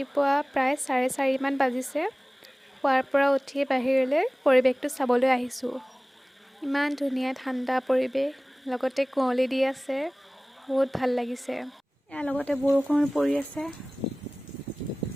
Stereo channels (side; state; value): both; normal; correlation 0.98